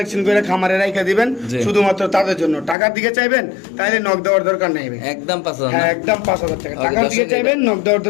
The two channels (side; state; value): right; drops out; at 2.8 s